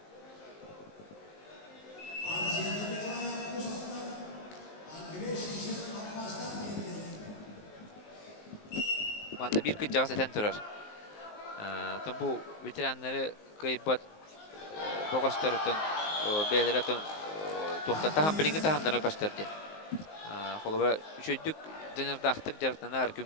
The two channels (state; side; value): late; right; 19 ms